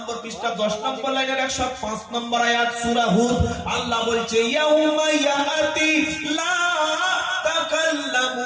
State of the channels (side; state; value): both; identical; correlation 1.00